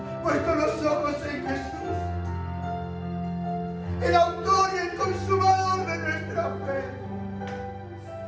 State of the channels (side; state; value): both; identical; correlation 1.00